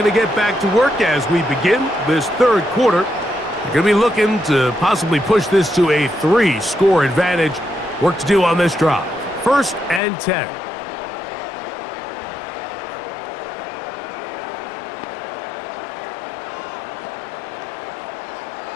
to get back to work as we begin this third quarter. They're going to be looking to possibly push this to a 3-score advantage. Work to do on this drive. 1st and 10.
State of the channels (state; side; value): drops out; right; at 10.0 s